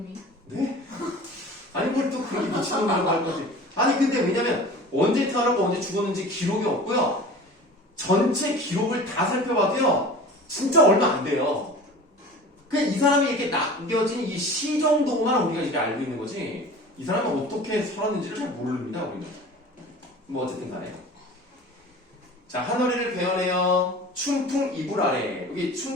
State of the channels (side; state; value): both; normal; correlation 0.39